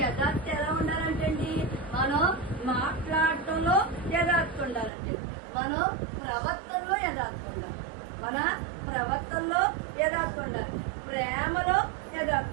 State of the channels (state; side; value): drops out; left; at 4.9 s